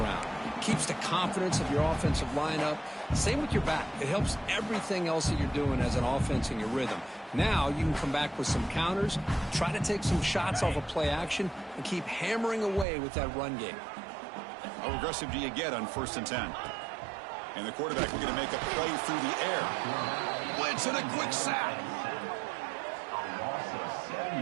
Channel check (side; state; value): left; drops out; at 12.9 s